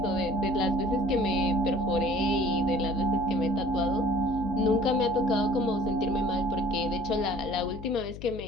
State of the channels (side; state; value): left; noise; hum, 13 dB below the sound